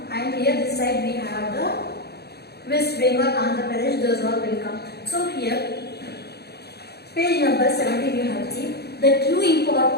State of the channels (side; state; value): right; late; 0.47 ms